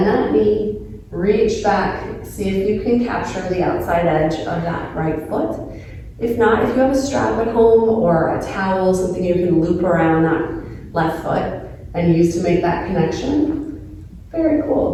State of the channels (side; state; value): both; identical; correlation 1.00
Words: that knee, reach back, see if you can capture the outside edge of that right foot. If not, if you have a strap at home or a towel, something you can loop around that left foot and use to make that connection, very